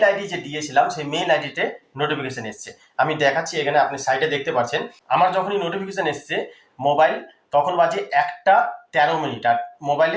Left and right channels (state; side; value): identical; both; correlation 1.00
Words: আইডি যে দিয়েছিলাম সেই মেল আইডিতে নোটিফিকেশন এসছে। আমি দেখাচ্ছি, এখানে আপনি সাইডে দেখতে পাচ্ছেন। আমার যখনই নোটিফিকেশন এসছে মোবাইল, তখন বাজে ১টা ১৩ মিনিট, আর